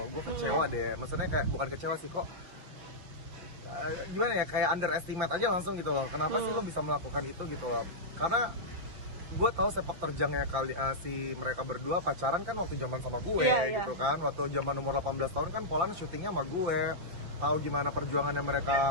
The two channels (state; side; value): late; left; 5.6 ms